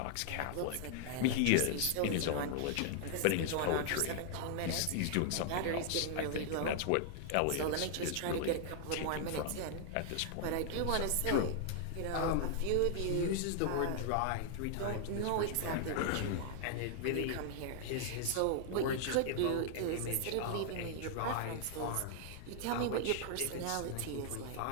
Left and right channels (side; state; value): both; different; correlation 0.00